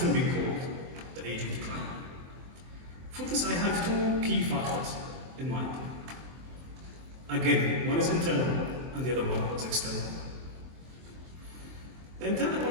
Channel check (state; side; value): late; left; 23 ms